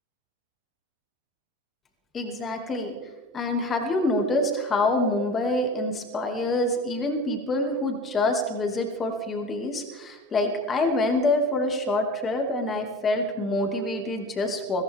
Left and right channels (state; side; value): normal; both; correlation 0.35